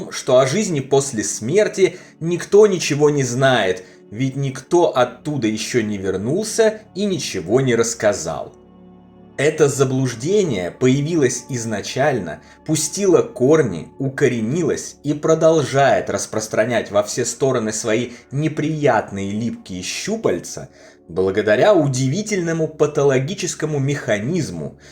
что о жизни после смерти никто ничего не знает, ведь никто оттуда еще не вернулся и ничего не рассказал. Это заблуждение появилось изначально, пустило корни, укоренилось и продолжает распространять во все стороны свои неприятные липкие щупальца благодаря удивительному патологическому механизму,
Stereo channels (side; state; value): both; identical; correlation 1.00